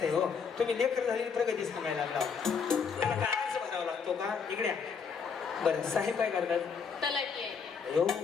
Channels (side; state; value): right; quieter; 6.0 dB